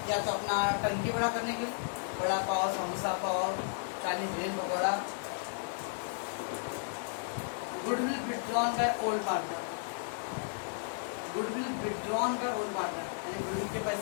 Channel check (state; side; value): silent; right; digital silence